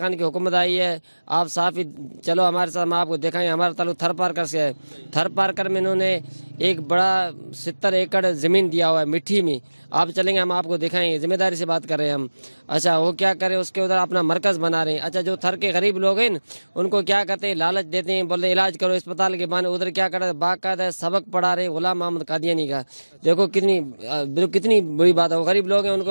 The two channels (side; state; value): both; inverted; correlation -1.00